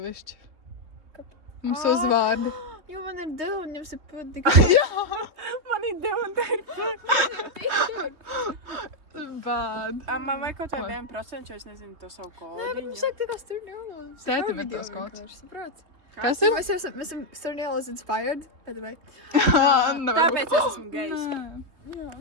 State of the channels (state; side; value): late; left; 3.4 ms